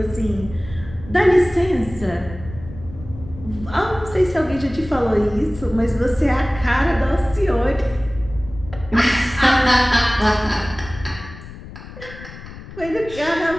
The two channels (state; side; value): noise; left; rumble, 15 dB below the sound